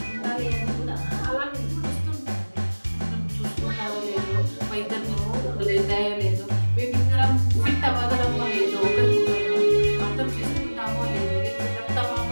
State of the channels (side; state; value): both; inverted; correlation -1.00